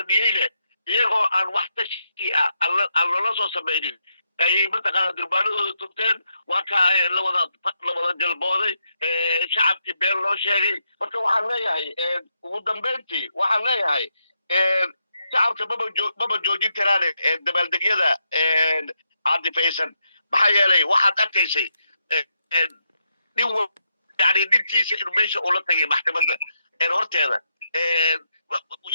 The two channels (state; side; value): inverted; both; correlation -0.82